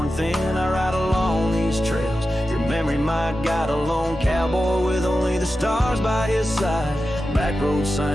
thin. I ride along these trails, your memory might guide a lone cowboy with only the stars by his side. Back road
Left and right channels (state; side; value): normal; both; correlation 0.92